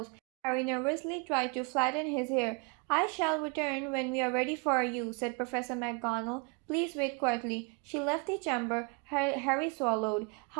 Harry nervously tried to flatten his hair. I shall return when we are ready for you, said Professor McGonagall. Please wait quietly. She left the chamber. Harry swallowed.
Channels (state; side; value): quieter; left; 32.8 dB